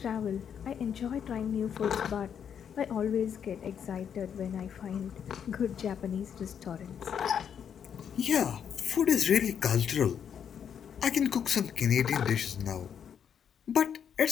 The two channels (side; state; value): right; quieter; 8.1 dB